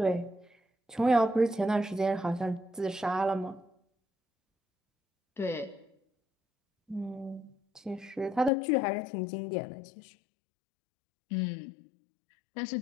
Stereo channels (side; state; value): right; drops out; at 8.5 s